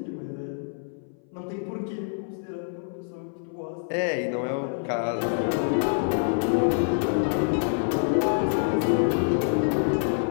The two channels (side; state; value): right; silent; 58 dB below the other